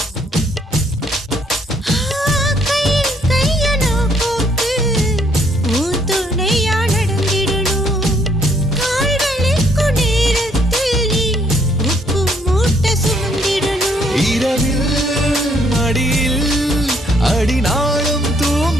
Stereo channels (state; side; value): normal; both; correlation 0.67